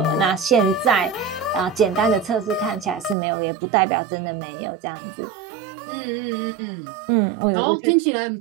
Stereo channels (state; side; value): drops out; left; at 3.2 s